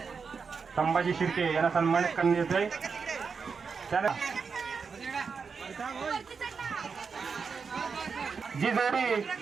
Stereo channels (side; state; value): left; quieter; 5.4 dB